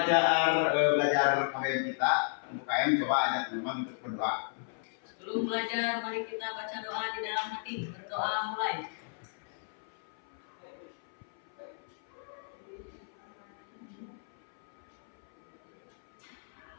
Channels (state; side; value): silent; right; 55 dB below the other